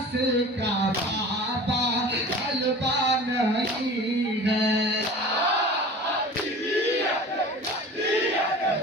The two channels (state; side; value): normal; both; correlation 0.40